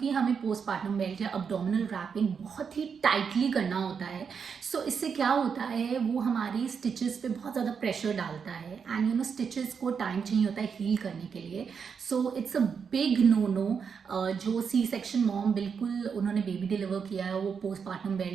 हमें पोस्टपार्टम बेल्ट या अब्डोमिनल रैपिंग बहुत ही टाइटली करना होता है, सो इससे क्या होता है वो हमारी स्टिचेस पे बहुत ज़्यादा प्रेशर डालता है एंड स्टिचेस को टाइम चाहिए होता है हील करने के लिए. So it's a big no. जो सी सेक्शन मॉम बिल्कुल उन्होंने बेबी डिलीवर किया है वो पोस्टपार्टम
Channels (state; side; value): quieter; left; 6.4 dB